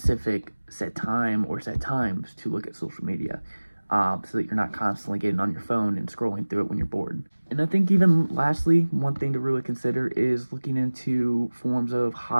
set time or set times to look at social media, so that you're not constantly getting on your phone and scrolling through it when you're bored. And I think even lastly, one thing to really consider is looking into forms of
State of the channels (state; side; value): inverted; both; correlation -1.00